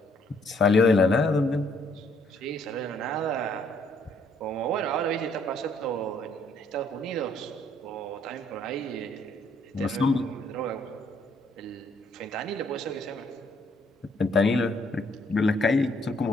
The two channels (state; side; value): normal; both; correlation 0.67